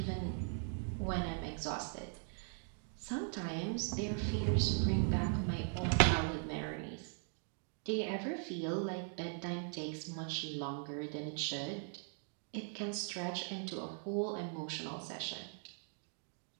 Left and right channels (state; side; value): silent; left; 51 dB below the other